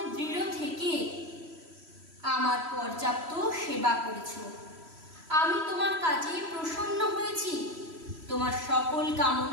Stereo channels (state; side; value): late; left; 3.1 ms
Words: দৃঢ় থেকে আমার পর্যাপ্ত সেবা করেছ। আমি তোমার কাজে প্রসন্ন হয়েছি। তোমার সকল